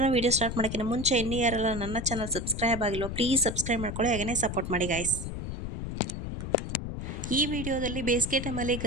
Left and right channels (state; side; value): noise; left; rumble, 5 dB below the sound